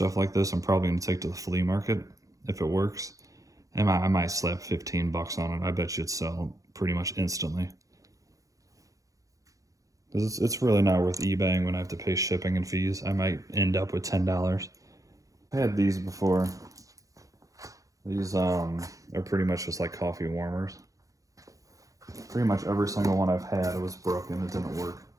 like this, I'm probably going to take to the flea market if it works. And I might slap 15 bucks on it. I bet you it'd sell pretty much instantly. It's really not worth eBaying when I have to pay shipping and fees. I might end up with $10. I had these before. These are pretty much just like coffee warmers. Pretty much every single one I've had, it was broken. It didn't work.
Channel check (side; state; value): left; late; 0.16 ms